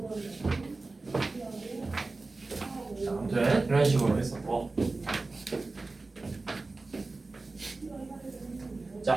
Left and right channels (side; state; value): left; quieter; 3.5 dB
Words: 자, 아무튼 이런 식으로 했었고.